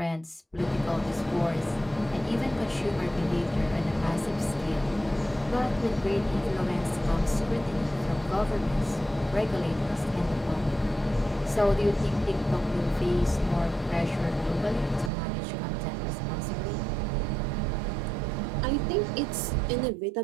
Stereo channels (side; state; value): left; drops out; at 15.1 s